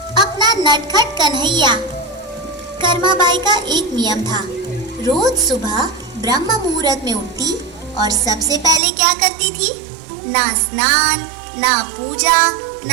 अपना नटखट कन्हैया। कर्माबाई का एक नियम था, रोज सुबह ब्रह्म मुहूर्त में उठती और सबसे पहले क्या करती थी? ना स्नान, ना पूजा,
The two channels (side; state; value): left; drops out; at 8.8 s